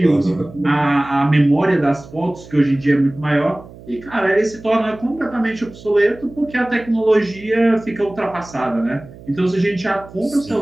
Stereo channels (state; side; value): noise; right; hum, 19 dB below the sound